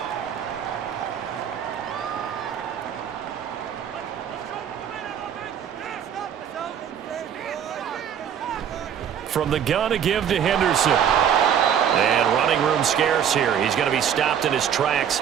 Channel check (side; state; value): left; quieter; 8.7 dB